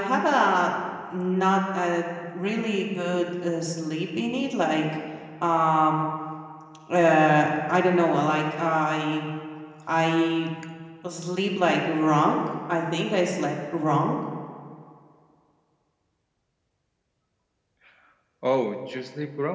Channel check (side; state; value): both; identical; correlation 1.00